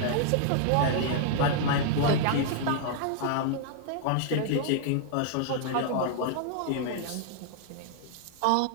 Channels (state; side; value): different; both; correlation -0.01